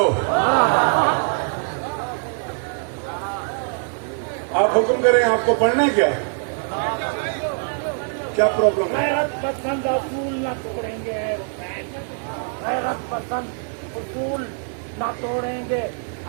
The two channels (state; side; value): silent; left; 56 dB below the other